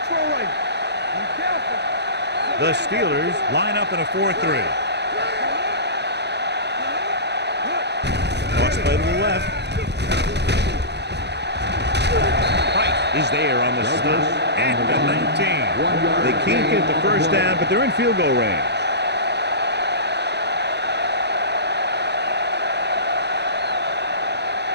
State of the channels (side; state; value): left; late; 0.49 ms